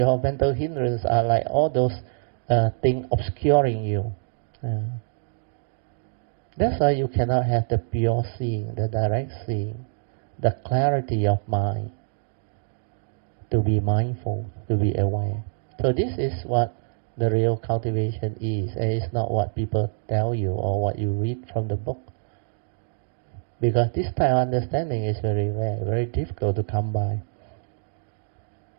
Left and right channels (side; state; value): left; silent; digital silence